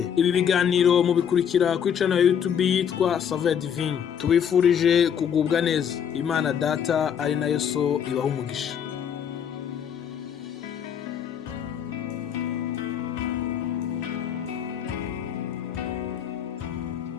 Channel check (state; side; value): quieter; right; 8.3 dB